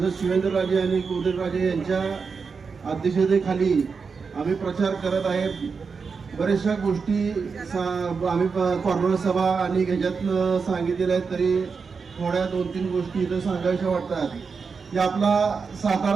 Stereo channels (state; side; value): quieter; left; 5.2 dB